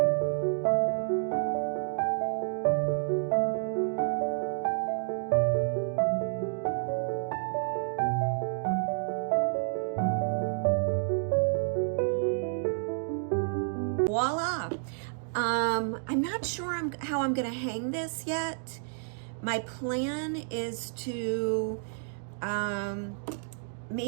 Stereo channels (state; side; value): silent; left; digital silence